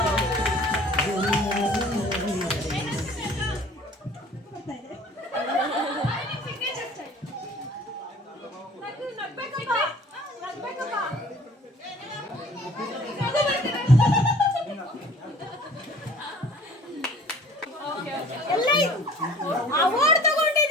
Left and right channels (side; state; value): both; normal; correlation 0.49